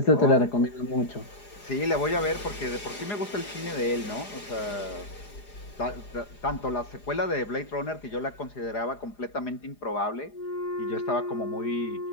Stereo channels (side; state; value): right; late; 4.9 ms